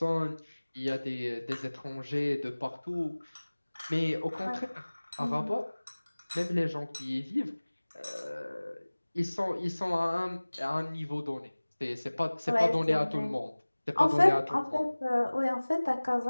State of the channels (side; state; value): both; inverted; correlation -1.00